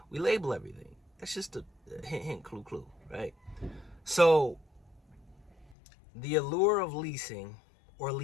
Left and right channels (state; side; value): drops out; right; at 5.8 s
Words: we label everything. That's just a hint, clue, right? So the allure of leasing or